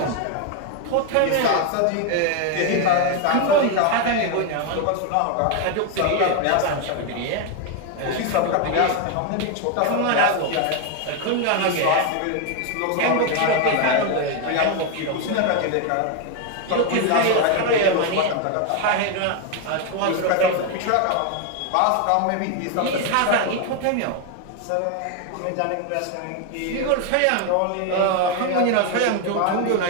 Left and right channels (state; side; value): different; both; correlation 0.01